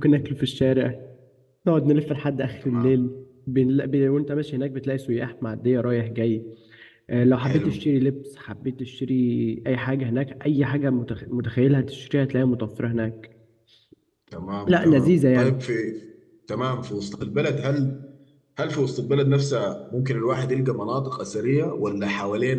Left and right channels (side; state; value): both; identical; correlation 1.00